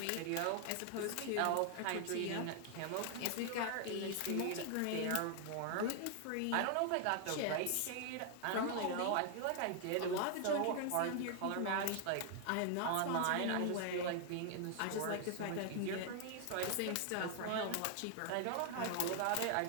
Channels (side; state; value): both; different; correlation 0.00